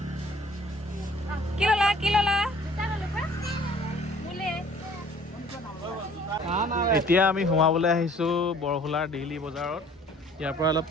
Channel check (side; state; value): both; normal; correlation 0.55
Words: কি ল'লা এতিয়া আমি সোমাবলৈ আহিছোঁ বৰহোলাৰ ডেইলি বজাৰত ইয়াৰ পৰা অলপ